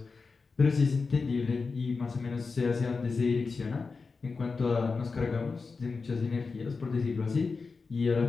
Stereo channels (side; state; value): right; quieter; 4.5 dB